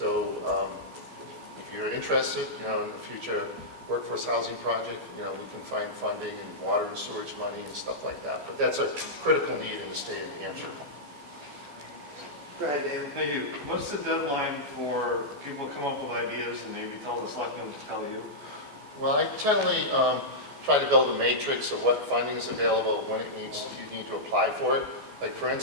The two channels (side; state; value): left; late; 14 ms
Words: if you're interested in the future workforce housing project, we can find funding and water and sewage money and stuff like that. But that's a critical need in the state of New Hampshire. Go ahead, Dan. Thank you. What's the deadline for people to come up with ideas and maybe tell the selectmen to tell you? Well, I generally try to build a matrix of what funding is available, when you need to apply for it. Like for